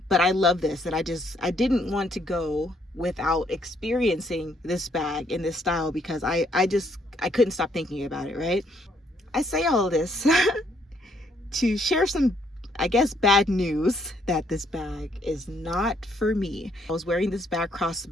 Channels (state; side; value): normal; both; correlation 0.70